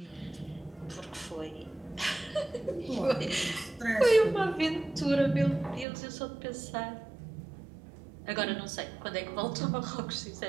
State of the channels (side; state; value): left; drops out; at 5.9 s